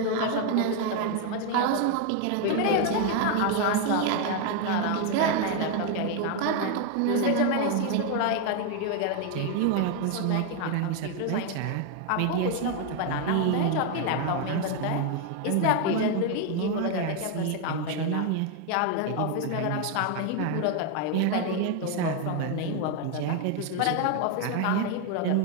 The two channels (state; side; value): different; both; correlation 0.01